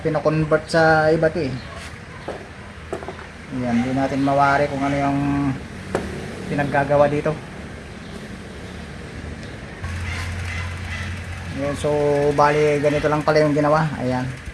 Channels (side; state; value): both; identical; correlation 1.00